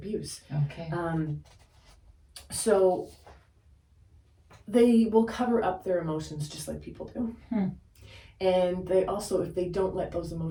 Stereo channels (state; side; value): identical; both; correlation 1.00